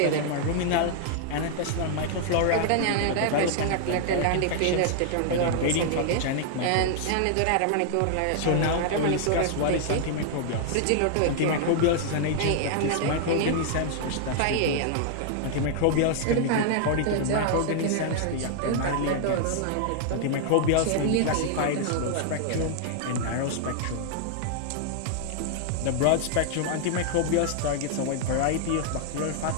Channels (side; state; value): both; different; correlation -0.01